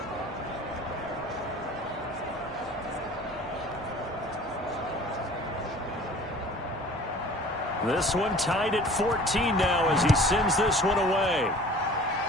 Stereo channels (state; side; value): normal; both; correlation 0.46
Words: This one tied at 14 now as he sends this one away.